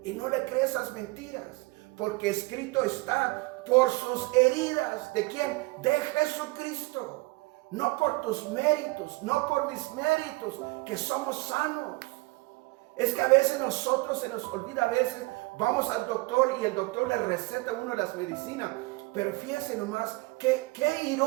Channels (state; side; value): quieter; left; 24.2 dB